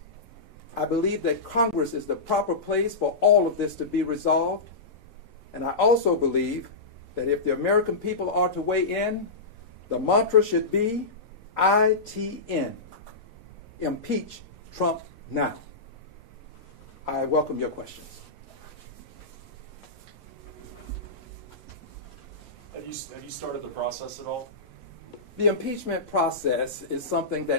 I believe that Congress is the proper place for all of this to be resolved. And I also believe that if the American people are to weigh in, the mantra should be ITN, impeach Trump now. I welcome your questions. Have you started the process at all? The impeachment process is something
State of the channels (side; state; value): right; quieter; 3.6 dB